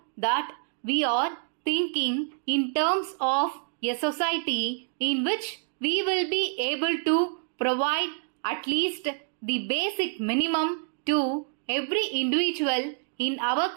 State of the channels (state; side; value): silent; left; 60 dB below the other